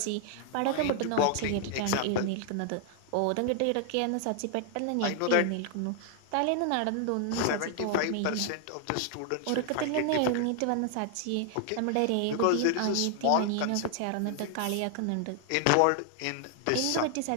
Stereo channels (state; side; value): different; both; correlation 0.00